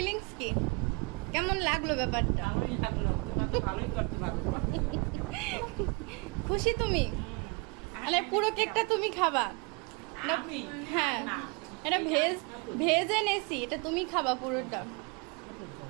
কি, কেমন লাগলো ব্যাপারটা? ভালোই লাগলো তোমার তো ভালোই করতে পারবো খুশি তুমি? মানে পুরো কেকটা তুমি খাবা? আমি হ্যাঁ না এটা ভেজ ভেজ এনেছি, এটা তুমি খাবা পুরোটা।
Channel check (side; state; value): left; quieter; 31.3 dB